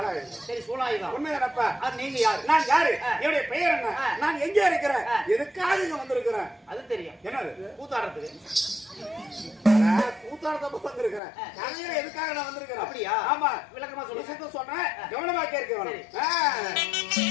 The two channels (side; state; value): right; drops out; at 11.2 s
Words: சரி, சூலாயுதம். உண்மையாப்பா? நீங்க யாரு? நான் யாரு? என்னுடைய பெயர் என்ன? நான் எங்க இருக்கிறேன்? எதுக்காக இங்க வந்திருக்கிறேன்? அது தெரியும். என்னது? கூத்தாடுறதுக்கு. கூத்தாடுறதுக்கு வந்திருக்கிறேன். எதுக்காக நான் வந்திருக்கிறேன்? அப்படியா? ஆமா, விளக்கமா சொல்றேன். கவனமா கேட்க